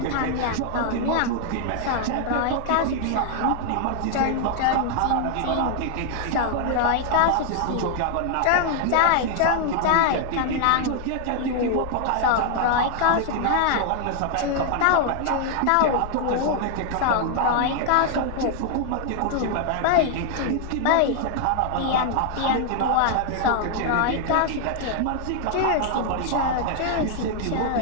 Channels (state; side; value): different; both; correlation 0.00